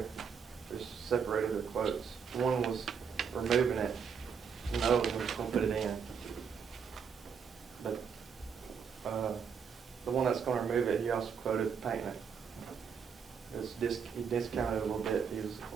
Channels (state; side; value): quieter; left; 6.6 dB